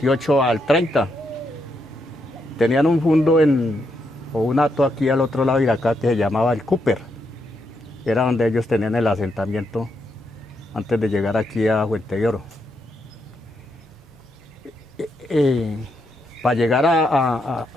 al 30. Tenían un fundo o un hato aquí al otro lado de acá que se llamaba el Cooper. Era donde ellos tenían el asentamiento antes de llegar aquí a Fuente de Oro. Para llegar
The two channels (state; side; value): normal; both; correlation 0.80